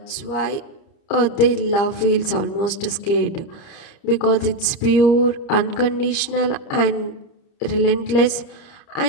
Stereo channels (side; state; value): right; late; 30 ms